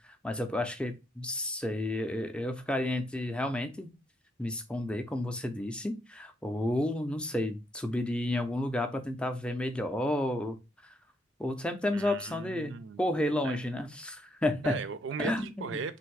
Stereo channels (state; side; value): normal; both; correlation 0.76